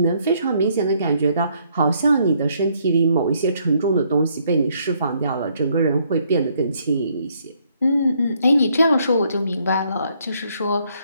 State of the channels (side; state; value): both; inverted; correlation -0.70